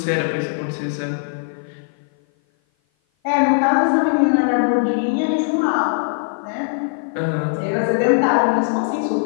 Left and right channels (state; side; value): silent; right; 56 dB below the other